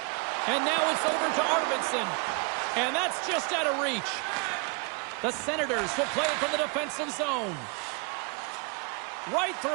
And now it's over to Arvidsson. And that's just out of reach. The Senators will play it from the defensive zone. Right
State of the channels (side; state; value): left; quieter; 33.1 dB